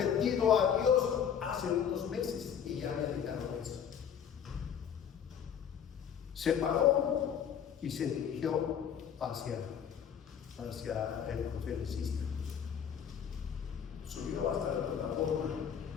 a Dios hace unos meses y ya había dejado eso. Se paró y se dirigió hacia el conferencista. Subió hasta la plataforma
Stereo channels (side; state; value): right; quieter; 8.2 dB